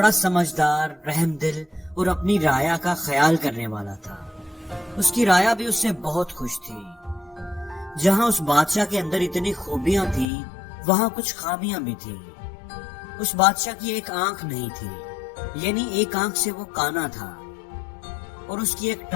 سمجھدار، رحم دل اور اپنی رعایا کا خیال کرنے والا تھا۔ اس کی رعایا بھی اس سے بہت خوش تھی۔ جہاں اس بادشاہ کے اندر اتنی خوبیاں تھی، وہاں کچھ خامیاں بھی تھی۔ اس بادشاہ کی ایک آنکھ نہیں تھی، یعنی ایک آنکھ سے وہ کانا تھا، اور اس کی ایک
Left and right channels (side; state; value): right; drops out; at 10.2 s